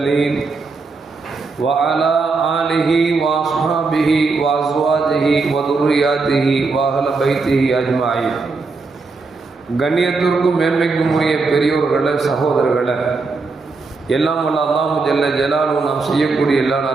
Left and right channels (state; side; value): quieter; left; 4.1 dB